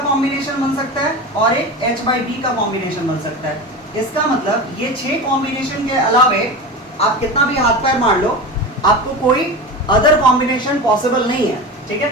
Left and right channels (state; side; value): normal; both; correlation 0.27